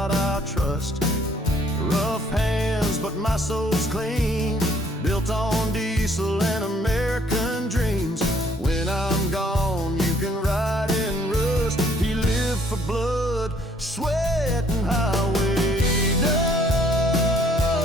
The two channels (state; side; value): normal; both; correlation 0.63